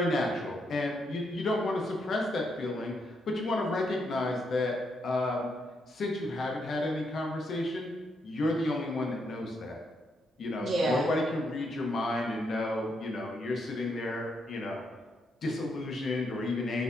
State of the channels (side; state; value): both; normal; correlation 0.78